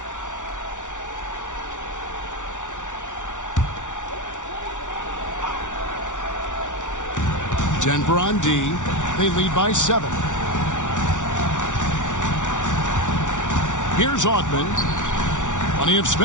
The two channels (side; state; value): right; late; 0.86 ms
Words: Denver on D. They lead by 7. Here's Augman. Plenty of